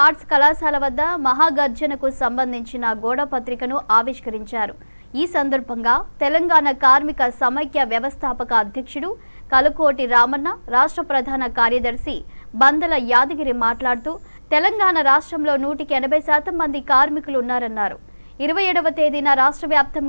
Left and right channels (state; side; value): inverted; both; correlation -1.00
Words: ఆర్ట్స్ కళాశాల వద్ద మహాగర్జనకు సంబంధించిన గోడ పత్రికను ఆవిష్కరించారు. ఈ సందర్భంగా తెలంగాణ కార్మిక సమైక్య వ్యవస్థాపక అధ్యక్షుడు కలుకోటి రామన్న, రాష్ట్ర ప్రధాన కార్యదర్శి బందల యాదగిరి మాట్లాడుతూ తెలంగాణ రాష్ట్రంలో 180% మంది కార్మికులు ఉన్నారన్నారు. 27వ తేదీన రాష్ట్ర